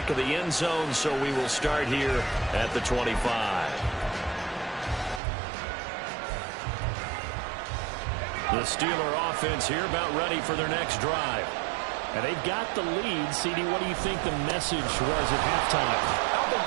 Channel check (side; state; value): left; drops out; at 5.2 s